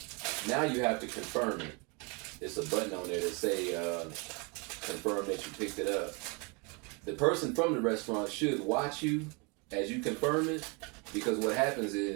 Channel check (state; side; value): quieter; left; 31.3 dB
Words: now you have to confirm it. There's a button on there that say confirm that you picked it up. The person from the restaurant should watch you as you confirm it, because what happens